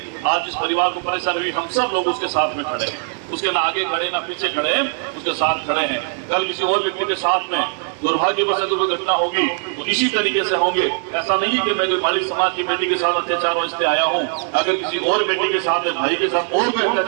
आज इस परिवार को परेशानी हुई, हम सब लोग उसके साथ में खड़े हैं, उसके ना आगे खड़े ना पीछे खड़े हैं, उसके साथ खड़े हैं। कल किसी और व्यक्ति के साथ में दुर्भाग्यवश अगर कोई घटना होगी तो इसी तरीके से होंगे। ऐसा नहीं है कि मैं कोई मालिक समाज की बेटी के साथ अत्याचार वास्ते आया हूँ। अगर किसी और बेटी के साथ, भाई के साथ और कोई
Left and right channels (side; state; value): left; silent; 57 dB below the other